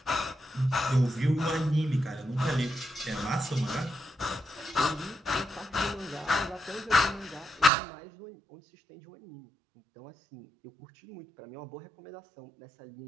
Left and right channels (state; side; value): drops out; left; at 7.7 s